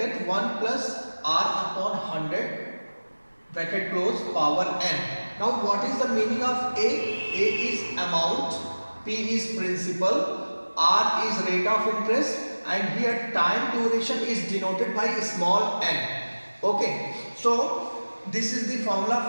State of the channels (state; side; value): inverted; both; correlation -1.00